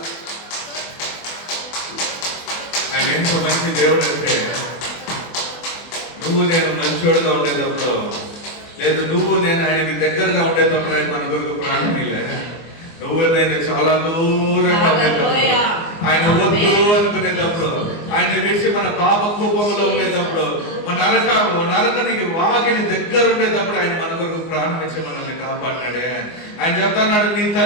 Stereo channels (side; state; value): right; late; 24 ms